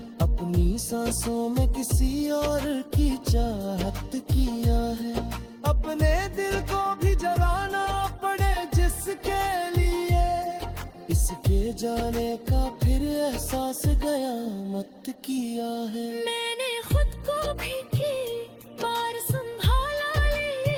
अपनी सांसों में किसी और की चाहत किया है अपने दिल को भी जलाना पड़े जिसके लिए इसके जाने का फिर एहसास गया मत किया है मैंने खुद को भी की बार संभाला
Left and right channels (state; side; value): identical; both; correlation 1.00